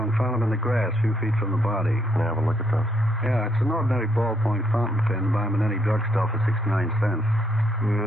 found them in the grass a few feet from the body. Can I have a look at those? Yeah, it's an ordinary ballpoint fountain pen. Buy them in any drugstore for 69 cents.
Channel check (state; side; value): normal; both; correlation 0.73